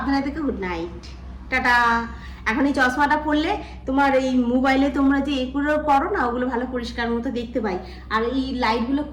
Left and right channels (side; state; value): both; identical; correlation 1.00